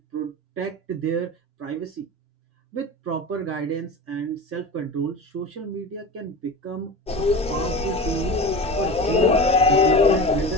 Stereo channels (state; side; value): normal; both; correlation 0.30